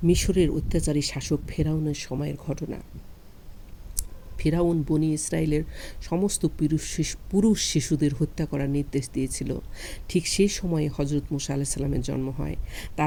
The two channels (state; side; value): identical; both; correlation 1.00